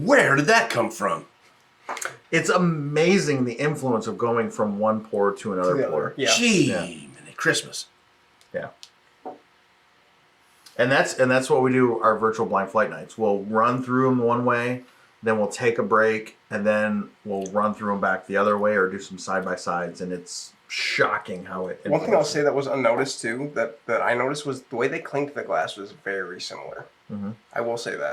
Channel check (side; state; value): both; identical; correlation 1.00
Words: did that come from? It's amazing the influence of going from one pour to another To the pour. other. Yeah. Gee, Yeah. mini Christmas. Yeah. And that's what we do our virtual blind flight nights. We'll run through them one way, then we'll take a break, and then we'll run through them back the other way or do some side by sides, and it's shocking how it. One thing I'll say that was unnoticed too, that I noticed was the way they clinked the glass was very similar. Mhm. I will say